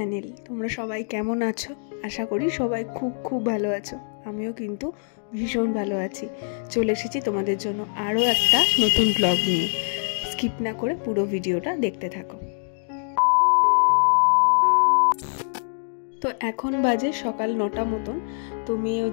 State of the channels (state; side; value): silent; right; digital silence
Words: তোমরা সবাই কেমন আছো? আশা করি সবাই খুব খুব ভালো আছো। আমিও কিন্তু ভীষণ ভালো আছি। চলে এসেছি তোমাদের জন্য আরও একটা নতুন ব্লগ নিয়ে। স্কিপ না করে পুরো ভিডিওটা দেখতে থাকো। তো এখন বাজে সকাল 9টা মতন। তো মেয়ে